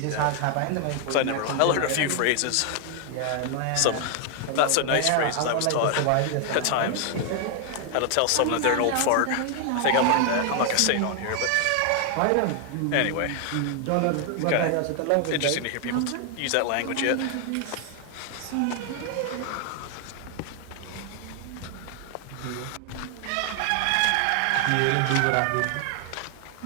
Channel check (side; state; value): both; different; correlation 0.00